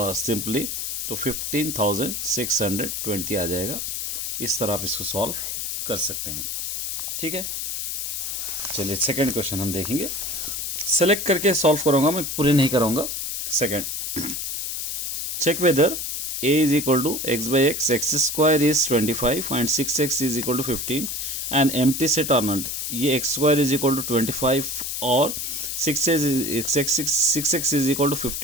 सिंपली तो 15,620 आ जाएगा। इस तरह आप इसको सॉल्व कर सकते हैं। ठीक है, चलिए सेकंड क्वेश्चन हम देखेंगे। सेलेक्ट करके सॉल्व करूँगा मैं, पूरे नहीं कराऊंगा। Second, check whether a is equal to x by x, x square is 25 and 6x is equal to 15 and empty set or not। ये x square is equal to 25 और 6x is equal to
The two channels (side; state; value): left; noise; hiss, 3 dB below the sound